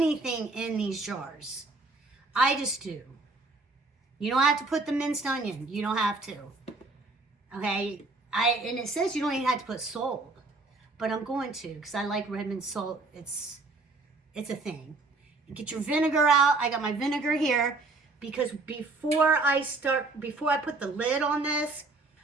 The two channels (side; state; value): left; quieter; 3.5 dB